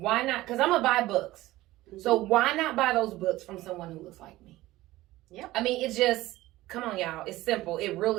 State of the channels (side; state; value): left; quieter; 17.2 dB